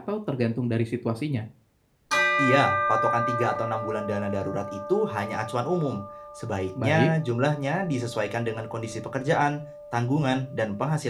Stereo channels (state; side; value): identical; both; correlation 1.00